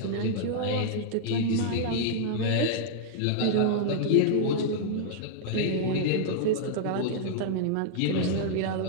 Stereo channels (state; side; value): different; both; correlation -0.01